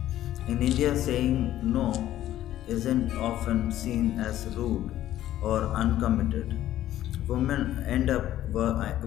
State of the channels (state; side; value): quieter; right; 13.1 dB